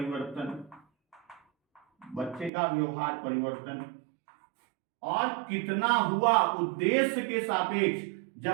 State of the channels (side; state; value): left; drops out; at 2.5 s